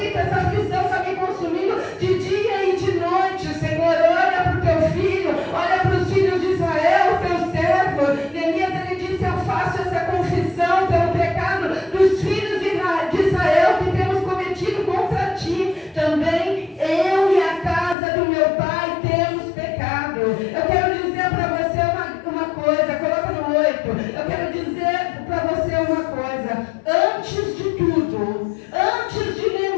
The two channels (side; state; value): right; drops out; at 17.9 s